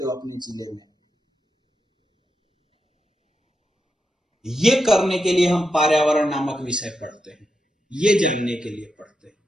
हो अपने जिले में, ये करने के लिए हम पर्यावरण नामक विषय पढ़ते हैं, ये जानने के लिए पढ़ते हैं।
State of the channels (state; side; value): normal; both; correlation 0.86